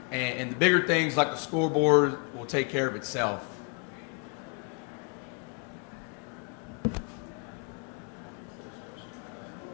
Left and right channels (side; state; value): right; quieter; 36.3 dB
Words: And the bigger things like the scoreboard will take care of itself.